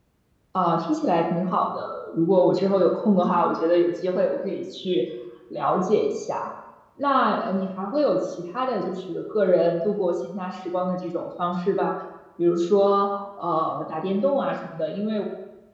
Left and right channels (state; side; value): identical; both; correlation 1.00